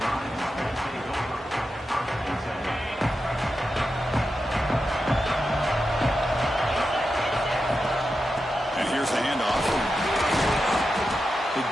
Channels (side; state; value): both; normal; correlation 0.89